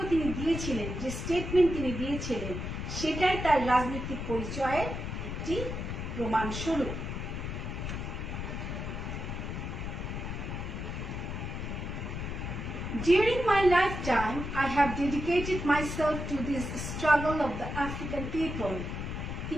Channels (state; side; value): noise; left; rumble, 5 dB below the sound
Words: তিনি দিয়েছিলেন, যে স্টেটমেন্ট তিনি দিয়েছিলেন, সেটাই তার রাজনৈতিক পরিচয়ের একটি প্রমাণস্বরূপ। During my lifetime, I have dedicated myself to this struggle of the African people.